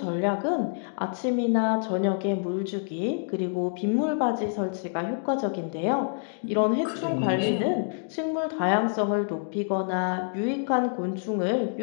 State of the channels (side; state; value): right; silent; digital silence